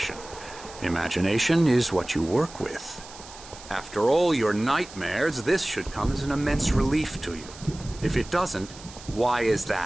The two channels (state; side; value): noise; right; hiss, 17 dB below the sound